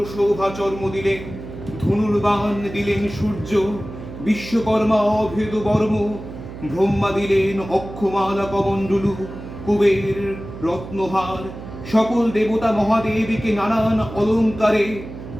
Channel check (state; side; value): noise; right; hum, 12 dB below the sound